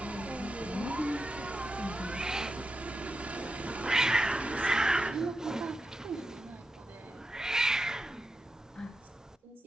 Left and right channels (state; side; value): normal; both; correlation 0.89